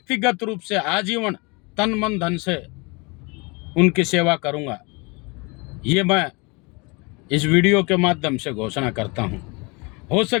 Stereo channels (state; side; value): quieter; right; 28.3 dB